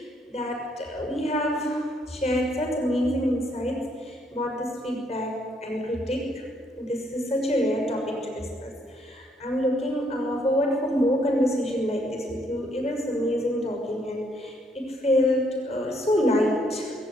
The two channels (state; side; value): normal; both; correlation 0.70